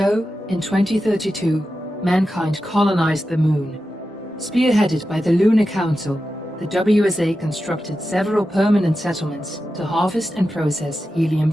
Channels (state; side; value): normal; both; correlation 0.91